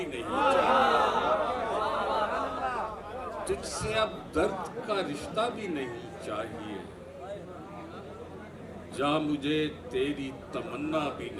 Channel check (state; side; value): identical; both; correlation 1.00